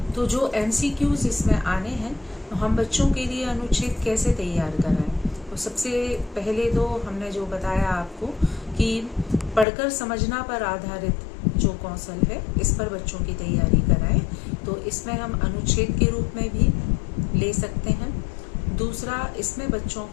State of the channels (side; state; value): right; drops out; at 9.7 s